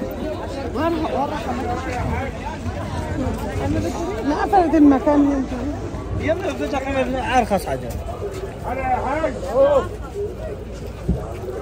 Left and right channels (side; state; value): both; identical; correlation 1.00